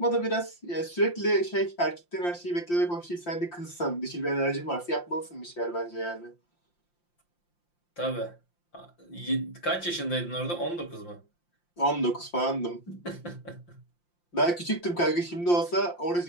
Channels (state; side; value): late; right; 5.8 ms